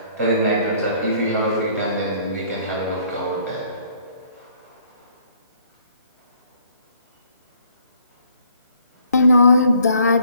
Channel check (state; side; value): inverted; both; correlation -0.62